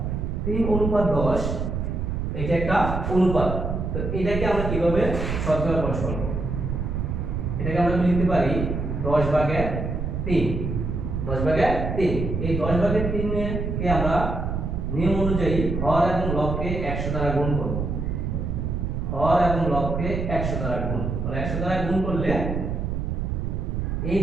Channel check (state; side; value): noise; right; rumble, 2 dB below the sound